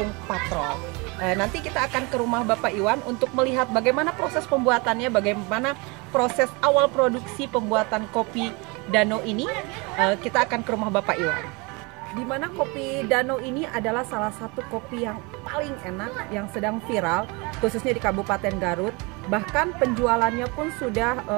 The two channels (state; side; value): quieter; left; 28.3 dB